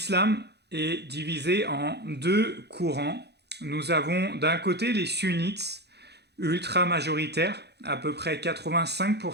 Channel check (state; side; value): late; left; 0.48 ms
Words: est divisé en deux courants. Nous avons d'un côté les sunnites, ultra majoritaires, à peu près